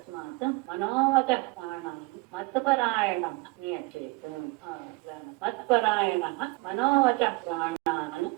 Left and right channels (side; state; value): left; quieter; 24.2 dB